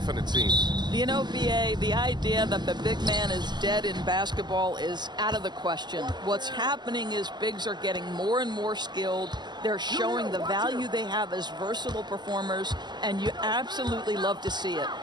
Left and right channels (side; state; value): left; late; 0.21 ms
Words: it seems. You know, BA, the idea that the big man is dead in basketball is out of the question. What's happening is bigs are getting more and more skilled. They're showing the value they have as versatile performers, and you absolutely love to see it.